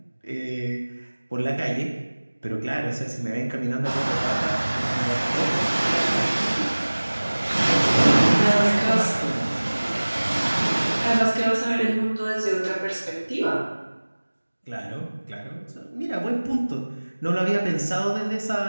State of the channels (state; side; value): inverted; both; correlation -1.00